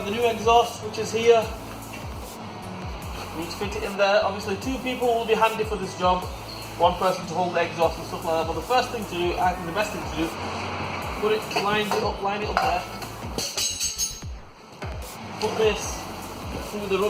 the new exhaust, which is here. We need to fit it in there. Obviously 2 people will be handy for this job. 1 person to hold the exhaust and stuff like that. But the first thing to do, I think the best thing to do, line it up there. Put this through the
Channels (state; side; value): identical; both; correlation 1.00